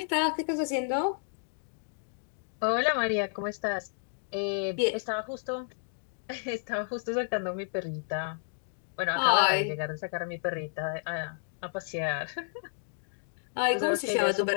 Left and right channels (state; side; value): silent; right; digital silence